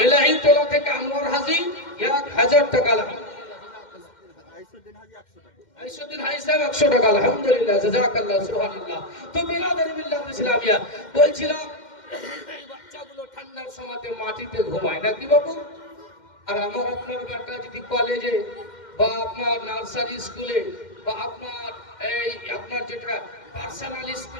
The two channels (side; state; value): right; late; 2.1 ms